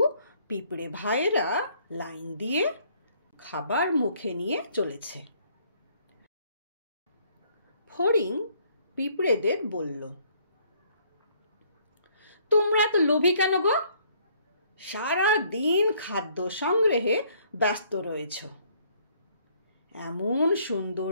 পিঁপড়ে ভাইয়েরা লাইন দিয়ে খাবার মুখে নিয়ে চলেছে। ফড়িং পিঁপড়েদের বলল, তোমরা তো লোভী কেন গো? সারা দিন খাদ্য সংগ্রহে ব্যস্ত রয়েছ। এমন সুন্দর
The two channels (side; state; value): both; inverted; correlation -0.63